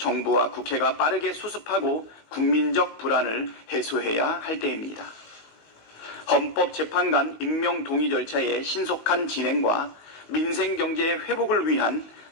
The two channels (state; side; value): late; right; 19 ms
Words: 국회가 빠르게 수습하고 국민적 불안을 해소해야 할 때입니다. 헌법재판관 임명 동의 절차의 신속한 진행과 민생경제의 회복을 위한